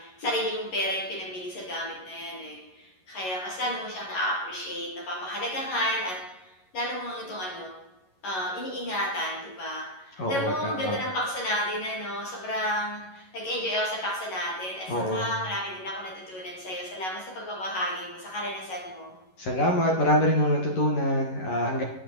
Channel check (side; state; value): right; late; 11 ms